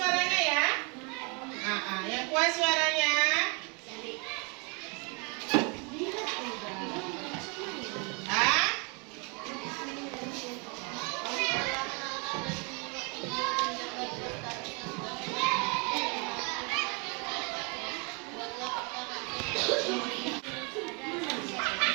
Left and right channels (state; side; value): quieter; left; 33.1 dB